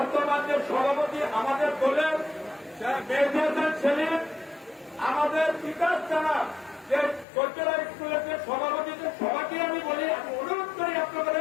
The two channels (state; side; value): drops out; right; at 7.2 s